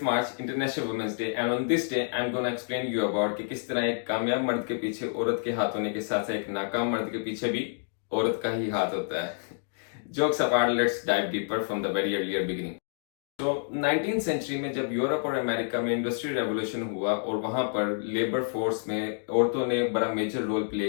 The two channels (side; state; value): right; silent; digital silence